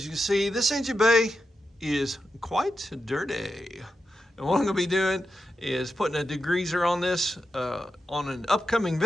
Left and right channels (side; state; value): both; normal; correlation 0.88